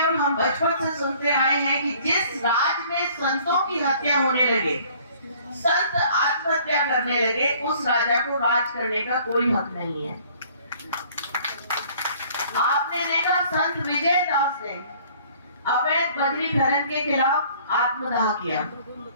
और हम बचपन से सुनते आए हैं कि जिस राज में संतों की हत्या होने लगे, संत आत्महत्या करने लगे, उस राजा को राज करने का कोई हक नहीं है। आपने देखा संत विजय दास ने अवैध बजरी खनन के खिलाफ आत्मदाह किया।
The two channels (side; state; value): both; inverted; correlation -0.55